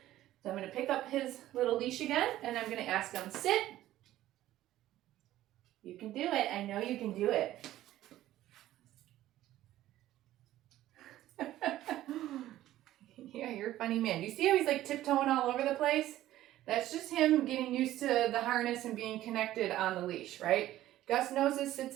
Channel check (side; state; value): left; quieter; 14.2 dB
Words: So I'm going to pick up his little leash again, and I'm going to ask him, sit. You can do it. I know you can do it. Yeah, you're funny man. You see how he's like tiptoeing all over the place? That's just him getting used to the harness and being connected on the leash, right? Gus knows his sits